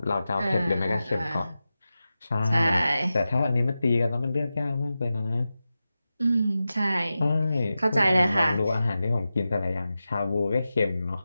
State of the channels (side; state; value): both; inverted; correlation -0.93